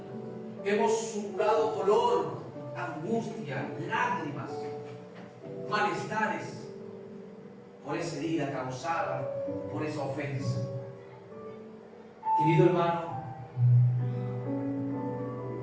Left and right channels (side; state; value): both; identical; correlation 1.00